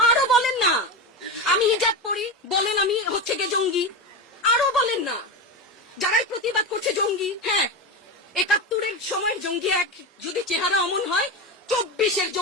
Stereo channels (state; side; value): normal; both; correlation 0.19